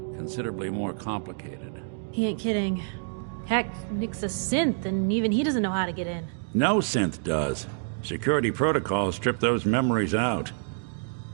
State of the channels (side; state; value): left; silent; digital silence